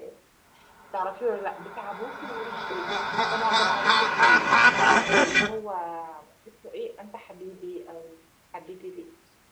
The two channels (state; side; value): identical; both; correlation 1.00